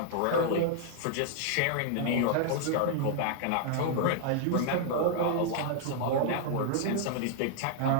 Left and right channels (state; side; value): different; both; correlation -0.01